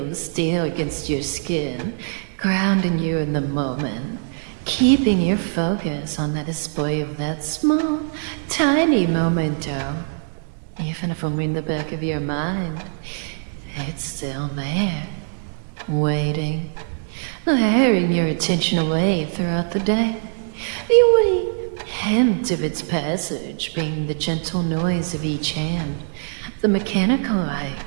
of steel against your skin, grounding you in the moment, keeping your focus on the display of that small, tiny memento. Even if only in the back of your mind, it's still there, waiting, luring your attention away throughout the day. The only hint of its passage being the gentle noise of each hand, the mechanical like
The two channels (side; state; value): left; silent; digital silence